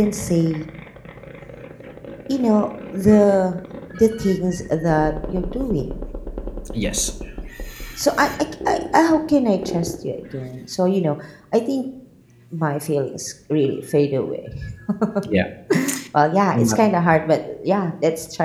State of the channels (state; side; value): identical; both; correlation 1.00